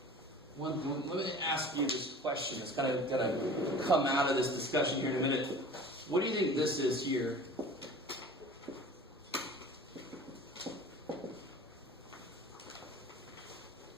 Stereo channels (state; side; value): normal; both; correlation 0.42